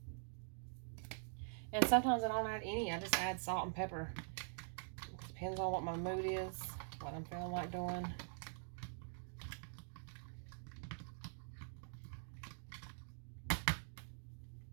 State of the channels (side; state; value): left; silent; digital silence